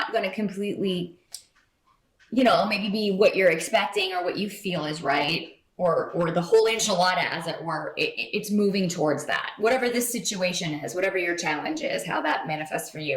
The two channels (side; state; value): both; identical; correlation 1.00